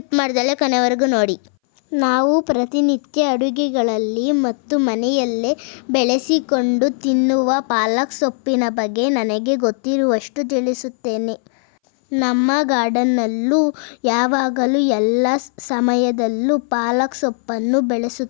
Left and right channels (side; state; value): right; silent; 62 dB below the other